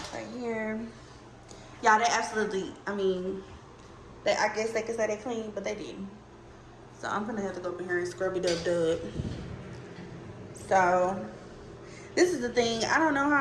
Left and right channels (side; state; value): both; identical; correlation 1.00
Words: right here. Y'all, they absolutely, I mean, I guess they could say they clean, but they didn't. So I'm gonna have to go up in here and scrub it up. So this is the thing. I don't know